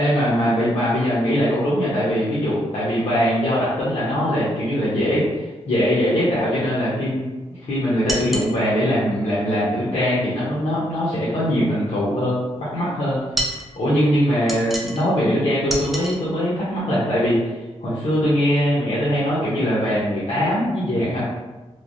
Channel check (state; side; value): normal; both; correlation 0.74